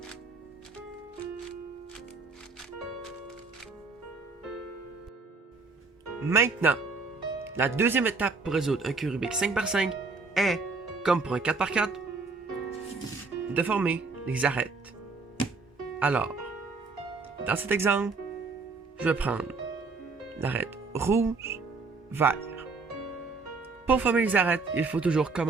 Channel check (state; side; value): quieter; left; 4.0 dB